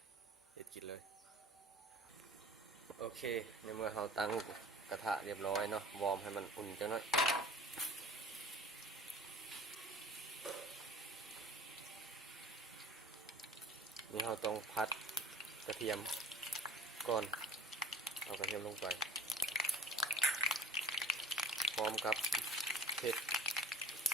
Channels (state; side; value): normal; both; correlation 0.43